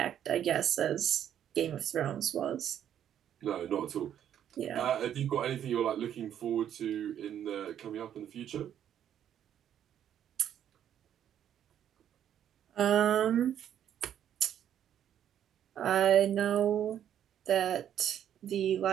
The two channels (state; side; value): quieter; left; 10.0 dB